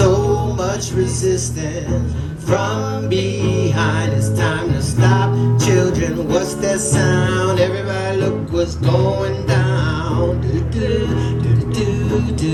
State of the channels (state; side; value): identical; both; correlation 1.00